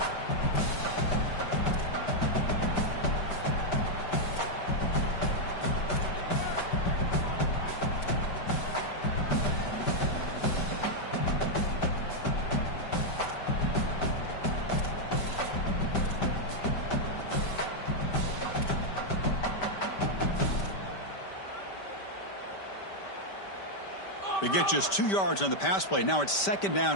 They get just 2 yards on the pass play. Now it's 2nd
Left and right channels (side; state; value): right; late; 5.1 ms